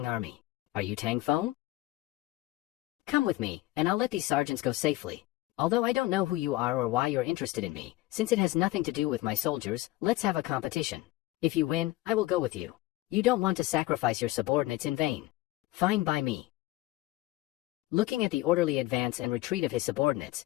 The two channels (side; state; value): right; quieter; 17.9 dB